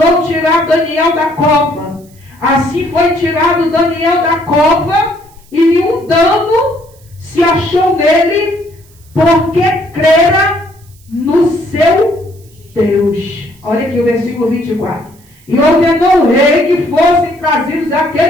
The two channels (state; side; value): noise; right; hiss, 29 dB below the sound